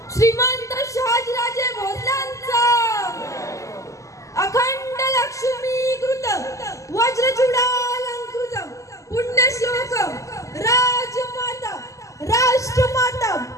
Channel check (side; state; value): right; late; 0.16 ms